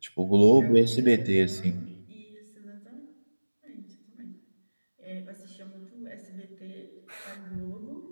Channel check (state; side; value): inverted; both; correlation -1.00